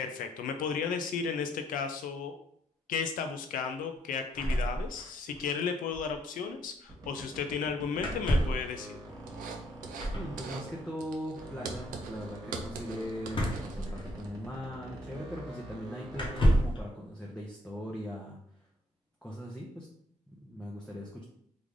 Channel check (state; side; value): normal; both; correlation 0.69